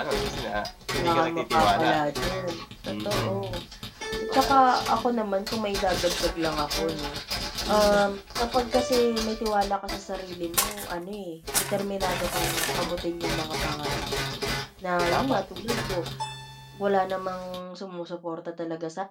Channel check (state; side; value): identical; both; correlation 1.00